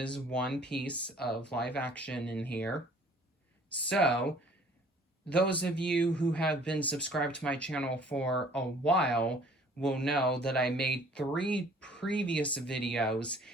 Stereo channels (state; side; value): normal; both; correlation 0.54